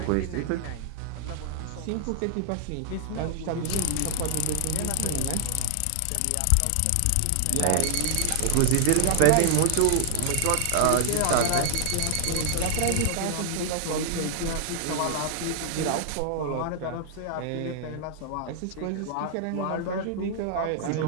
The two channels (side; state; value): both; different; correlation 0.00